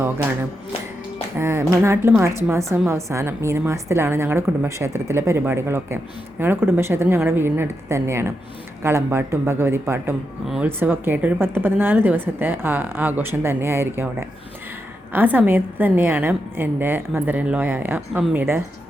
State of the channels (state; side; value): normal; both; correlation 0.85